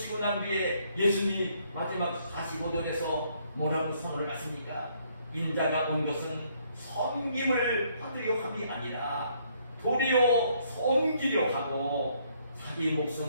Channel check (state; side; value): inverted; both; correlation -0.68